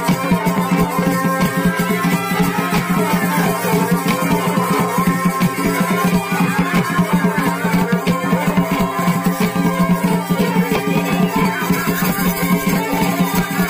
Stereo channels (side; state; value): both; identical; correlation 1.00